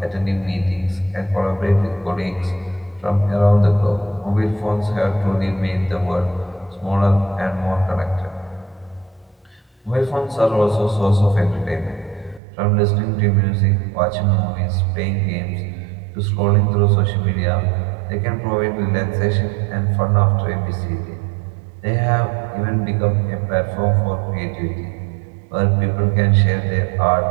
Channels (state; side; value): drops out; left; at 12.4 s